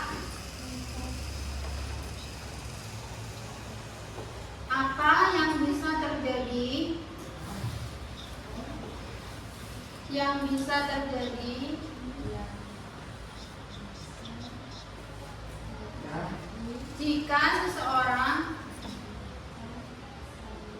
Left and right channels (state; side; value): identical; both; correlation 1.00